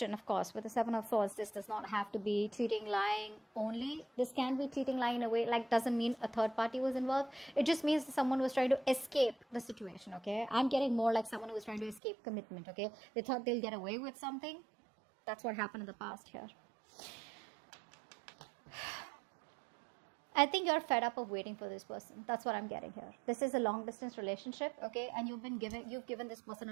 of course, with the Seven of Swords, this does not have to be cheating, lying only. This can be cheating, lying in a way, like doesn't mean a third party was involved. It just means someone was trying to escape the situation, okay. I'm getting more like someone who was trying to escape commitment, okay. They thought they'll get away with something. That's what happened in the past here. I think you're fed up of waiting for this person. That's what I'm getting here. This is a long distance relationship, okay? And you've given this person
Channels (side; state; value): left; drops out; at 12.0 s